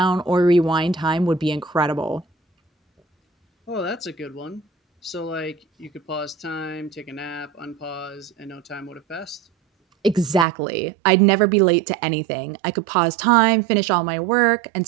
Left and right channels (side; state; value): left; drops out; at 10.5 s